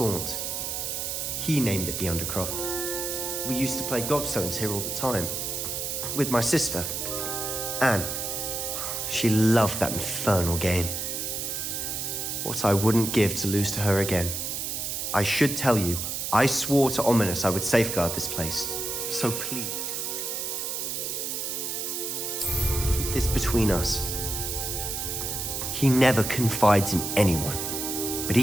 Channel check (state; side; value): noise; right; hiss, 3 dB below the sound